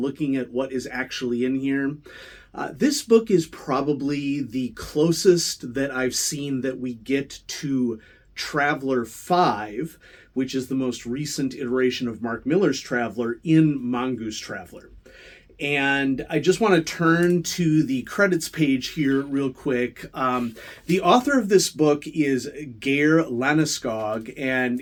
at what is actually in here. This book is probably the closest that I've seen that we get to Traveler 5, which is the most recent iteration of Mark Millar's Traveler in Mongoose Traveler. And I just want to turn to the credits page here real quick. The author of this book is Geir Landeskog,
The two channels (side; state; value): both; identical; correlation 1.00